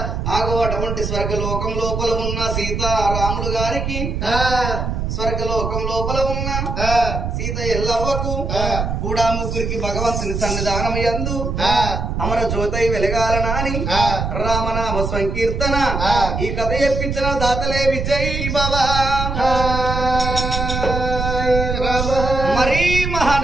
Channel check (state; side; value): noise; right; rumble, 3 dB below the sound